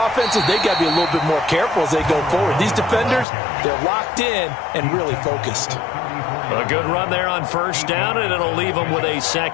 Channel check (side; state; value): right; drops out; at 3.2 s